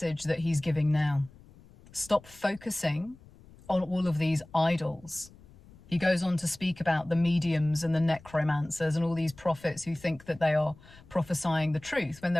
that he's giving now. Stop focusing on all of these idols. He goes on to speak about the mediums and the necromancers and all these prophets who think that they are prophesying the truth when they're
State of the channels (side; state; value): left; noise; rumble, 23 dB below the sound